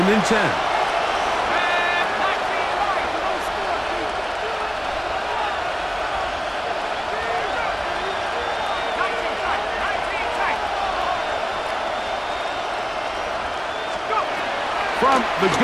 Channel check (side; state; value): both; identical; correlation 1.00